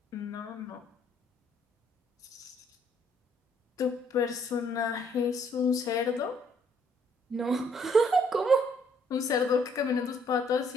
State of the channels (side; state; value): both; normal; correlation 0.66